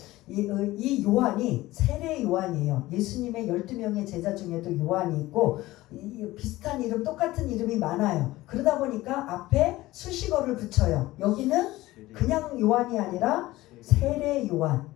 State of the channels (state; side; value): quieter; right; 17.7 dB